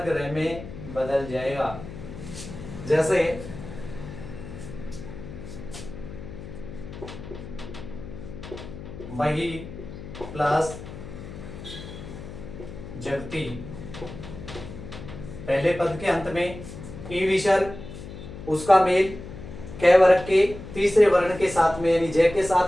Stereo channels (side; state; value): left; noise; hum, 12 dB below the sound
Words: रे में बदल जाएगा। जैसे मही प्लस जगती, पहले पद के अंत में ई विसर्ग, उसका मेल कै वर्ग के तीसरे वर्ण के साथ में यानी जय के